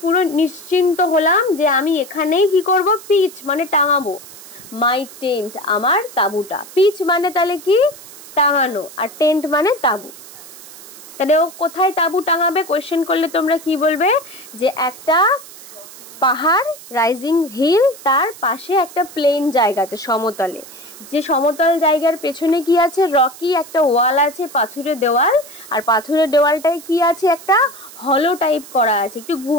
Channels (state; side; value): noise; right; hiss, 17 dB below the sound